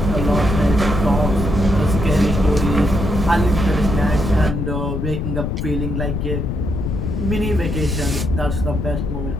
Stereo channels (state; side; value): noise; left; rumble, 2 dB below the sound